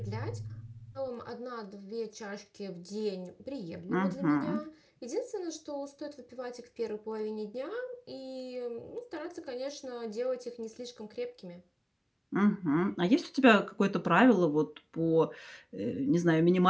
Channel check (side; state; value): both; identical; correlation 1.00